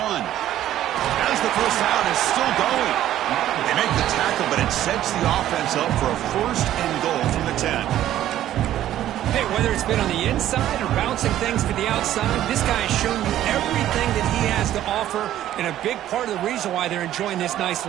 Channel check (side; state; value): left; quieter; 12.6 dB